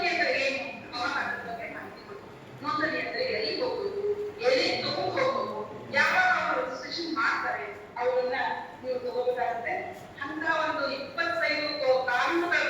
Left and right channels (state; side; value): identical; both; correlation 1.00